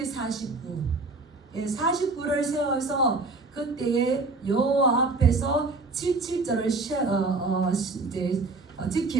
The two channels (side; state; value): left; quieter; 3.5 dB